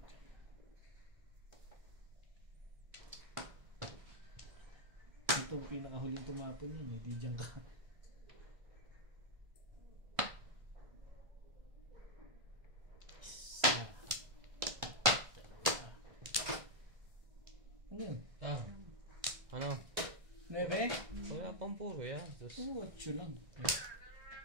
dyan? Ito ang pinakahuling tumapon yun. Hindi dyan ka. Ano yun? Ah. Ano? 9? Wala pang puro yan. 2, 8 lang.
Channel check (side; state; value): left; late; 1.6 ms